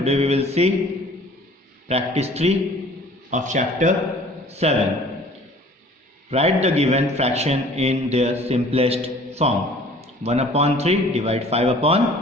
we will see practice 3 of chapter 7. Write the given fraction in their simplest form. 1 upon 3 divide 5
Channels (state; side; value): normal; both; correlation 0.50